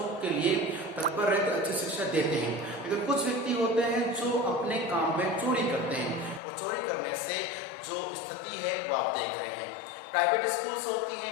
के लिए तत्पर रहते, अच्छी शिक्षा देते हैं, लेकिन कुछ व्यक्ति होते हैं जो अपने काम में चोरी करते हैं, और चोरी करने से जो स्थिति है वो आप देख रहे हैं। प्राइवेट स्कूल्स होती हैं,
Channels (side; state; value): right; drops out; at 6.4 s